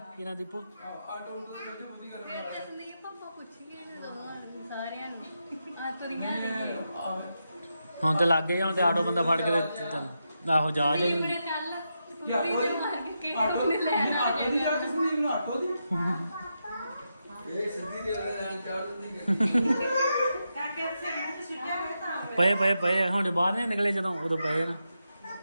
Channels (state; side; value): inverted; both; correlation -0.86